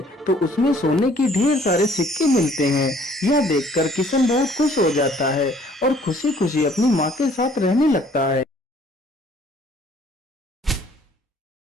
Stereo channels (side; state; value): both; normal; correlation 0.58